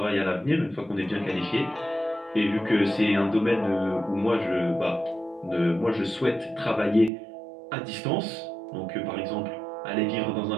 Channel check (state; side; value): drops out; left; at 7.1 s